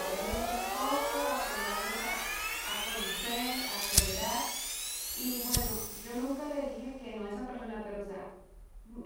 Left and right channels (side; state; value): both; identical; correlation 1.00